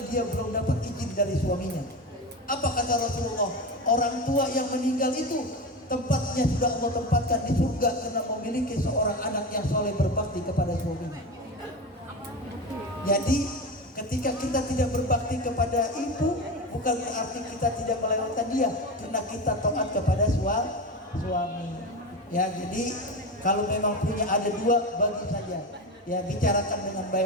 dia belum dapat izin dari suaminya. Apa kata Rasulullah? Orang tua yang meninggal itu tempatnya sudah Allah tempatkan di surga karena memiliki seorang anak yang soleh berbakti kepada suaminya. Jadi ketika kita tidak berbakti kepada ibu, bukan berarti kita tidak melewatkan dia, karena kita taat kepada suami. Ya, jadi kalau memang punya ada 2, bagi saja. Ya, bicarakan dengan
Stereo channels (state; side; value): normal; both; correlation 0.22